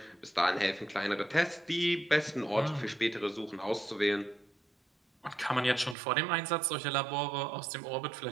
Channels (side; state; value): left; drops out; at 6.0 s